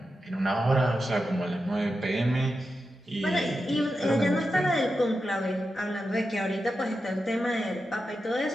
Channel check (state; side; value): normal; both; correlation 0.89